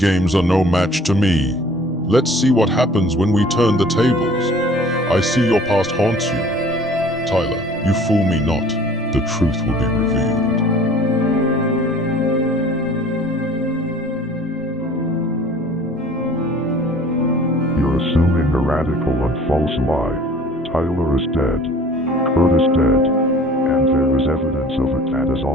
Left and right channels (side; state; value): both; normal; correlation 0.49